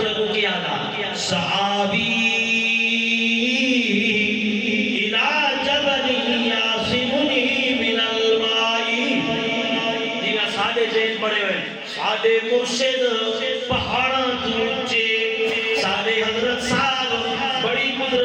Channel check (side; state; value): both; identical; correlation 1.00